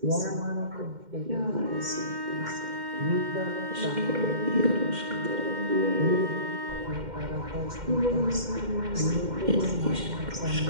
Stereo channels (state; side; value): late; left; 2.1 ms